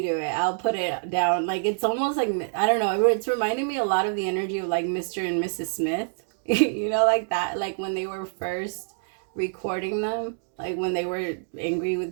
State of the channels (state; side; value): silent; left; digital silence